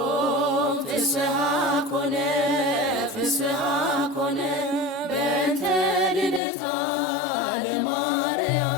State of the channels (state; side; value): drops out; right; at 6.4 s